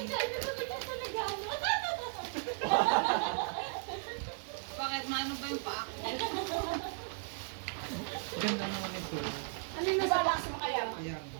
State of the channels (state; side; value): silent; left; digital silence